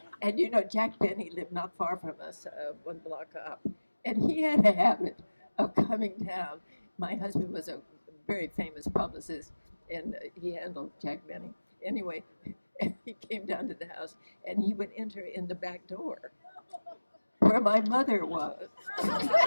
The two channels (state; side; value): inverted; both; correlation -1.00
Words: And you know, Jack Benny lived not far from us, one block up. And he had a habit of coming down. My husband was a very famous publicist, and he handled Jack Benny. Anyway, and he came down to the house, and he would enter in the back door where my mother was.